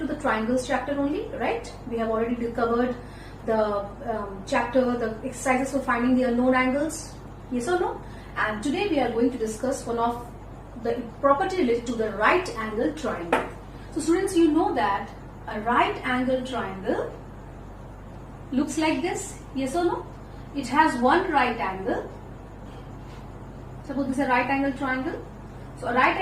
the triangles chapter only, right? We have already covered the chapter, the exercises for finding the unknown angles, yes or no? And today we are going to discuss one of the property related to the right angle triangle. So students, you know that a right angle triangle looks like this, yes or no? It has one right angle. Suppose this is a right angle triangle. So a right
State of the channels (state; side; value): identical; both; correlation 1.00